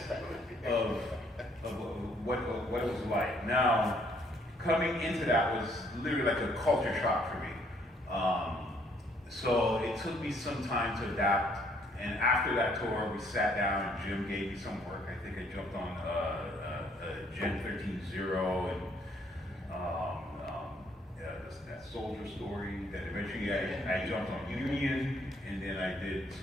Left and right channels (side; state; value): both; normal; correlation 0.66